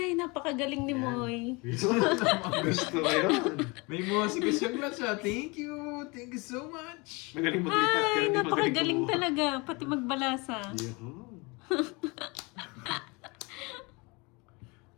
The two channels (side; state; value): right; quieter; 27.3 dB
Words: napakagaling ni Moy. Gusto ko yun. May mosi ko siya, Glutch. Thank you. Thank you so much. Magaling maglipat. Ay, hindi napakagaling kumuha. talaga. Pati magbalasa. Yun.